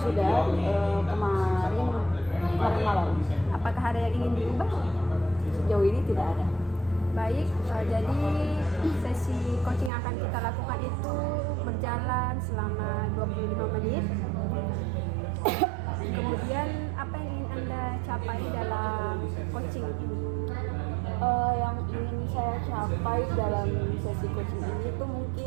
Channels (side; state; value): left; drops out; at 9.9 s